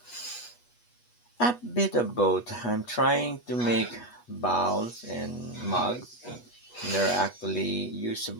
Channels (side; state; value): right; late; 8.3 ms